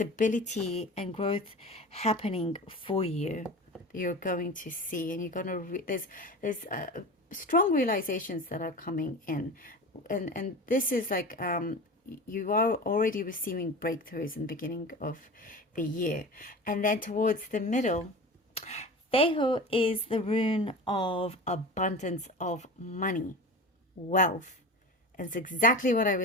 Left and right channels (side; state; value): both; normal; correlation 0.32